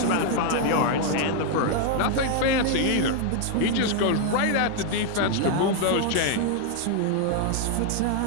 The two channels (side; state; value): both; different; correlation 0.00